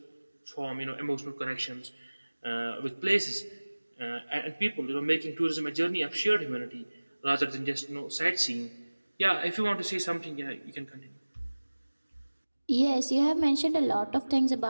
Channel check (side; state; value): both; inverted; correlation -1.00